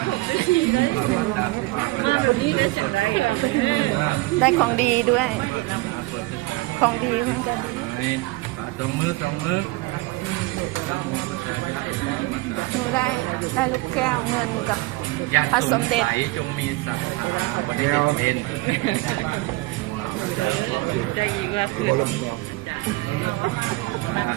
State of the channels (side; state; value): left; quieter; 21.8 dB